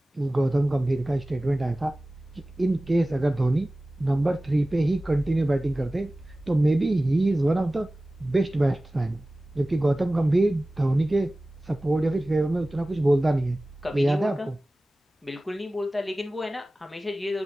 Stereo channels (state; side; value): normal; both; correlation 0.97